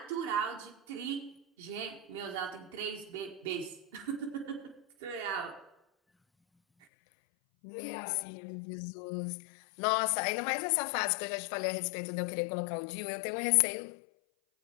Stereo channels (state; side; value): drops out; right; at 6.9 s